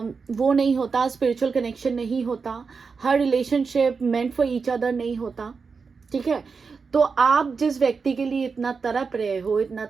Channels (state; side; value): quieter; left; 5.1 dB